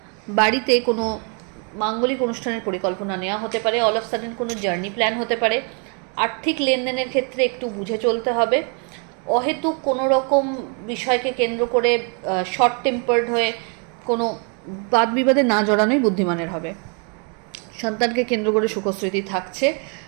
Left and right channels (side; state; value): left; quieter; 38.0 dB